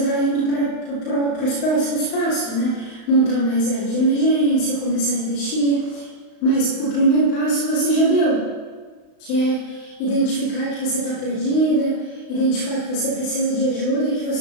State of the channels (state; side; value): late; right; 35 ms